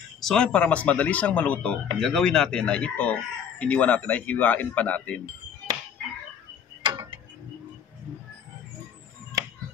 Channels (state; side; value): quieter; right; 7.9 dB